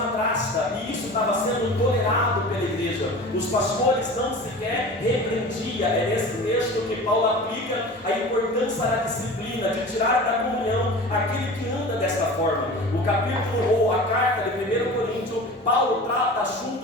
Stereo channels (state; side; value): normal; both; correlation 0.37